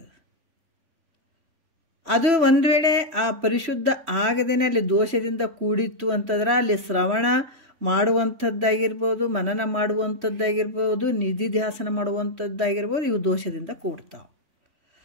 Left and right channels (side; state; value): left; late; 3.5 ms